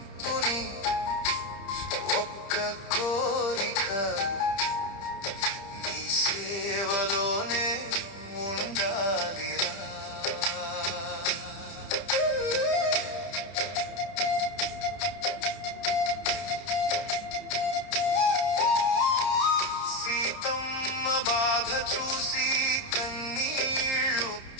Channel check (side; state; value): right; late; 30 ms